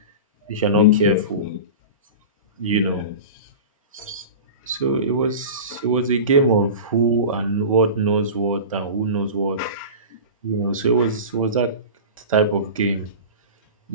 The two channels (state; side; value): inverted; both; correlation -0.31